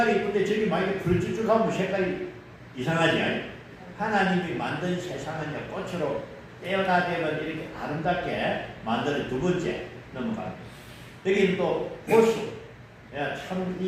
이쁜데 저기 만약에 불쭉쭉하면 색깔이 이상하지? 하나님이 만든 세상은 꽃으로 떼어다대면 이렇게 아름답게 만들어. 두 번째 넘어갑니다. 여기는 또 호수. 참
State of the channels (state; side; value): identical; both; correlation 1.00